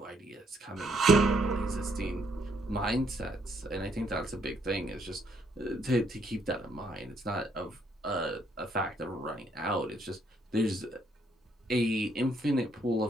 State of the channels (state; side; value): normal; both; correlation 0.70